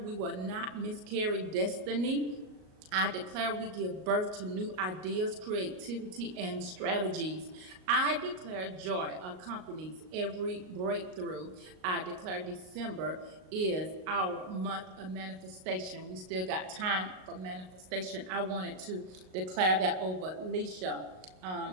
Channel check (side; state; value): left; late; 38 ms